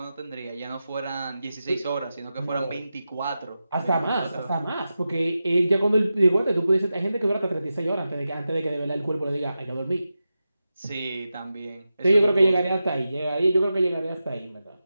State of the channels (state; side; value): inverted; both; correlation -0.92